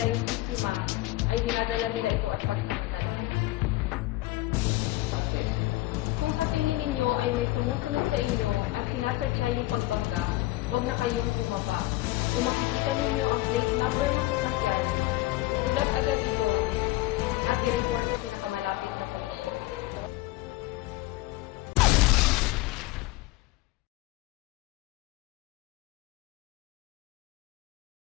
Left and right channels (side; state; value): right; quieter; 18.3 dB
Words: yung biktima, ay dinadala nila ito at pagsamantalahan. Kung sa tingin ninyo ay may sumusunod sa inyo at sinasadya yung pagbangga, huwag na kayong bumaba. Kung makikita ninyo ang plate number ng sasakyan, isulat agad ito at i-report sa pinakamalapit na pulisya.